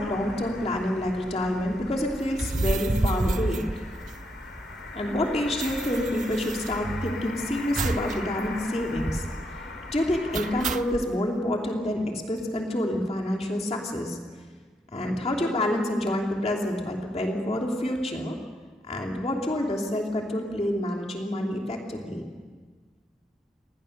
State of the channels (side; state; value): both; normal; correlation 0.78